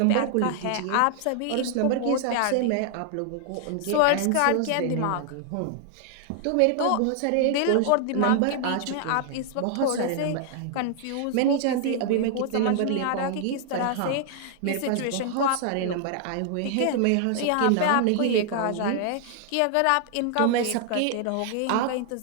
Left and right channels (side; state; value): both; different; correlation -0.01